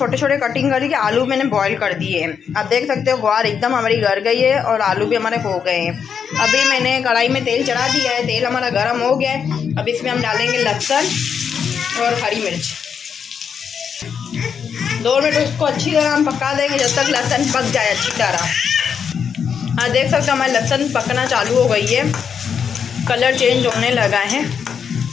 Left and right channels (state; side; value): quieter; right; 7.1 dB